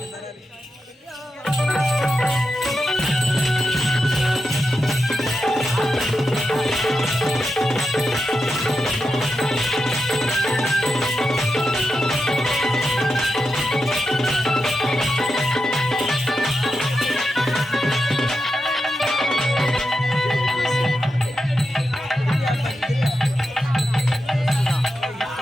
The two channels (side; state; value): both; normal; correlation 0.88